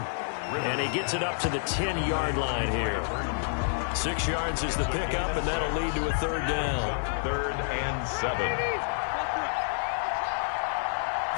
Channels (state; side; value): silent; right; digital silence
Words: And he gets it up to the 10-yard line here. 6 yards is the pickup, and that'll lead to a third down. 3rd and 7.